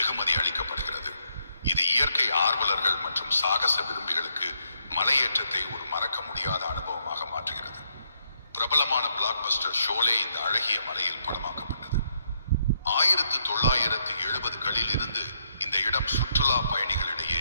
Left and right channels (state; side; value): inverted; both; correlation -0.76